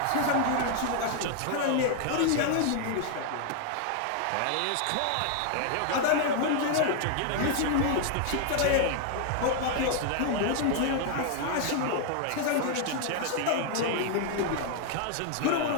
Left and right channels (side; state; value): both; different; correlation 0.00